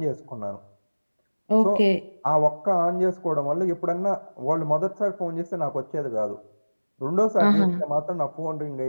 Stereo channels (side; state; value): both; inverted; correlation -1.00